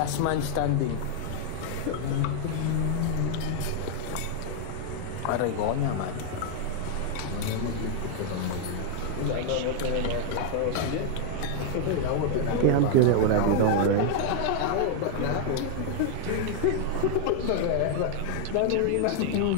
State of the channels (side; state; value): both; different; correlation 0.00